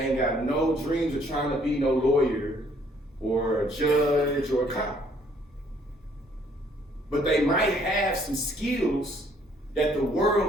ain't got no dreams of trying to be no lawyer or a judge or a cop. But they might have some skills that the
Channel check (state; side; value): normal; both; correlation 0.64